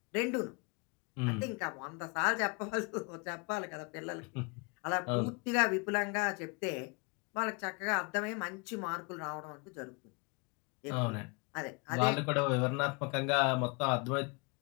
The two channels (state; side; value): quieter; right; 31.9 dB